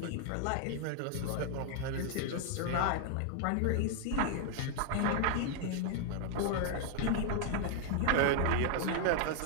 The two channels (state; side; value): different; both; correlation 0.00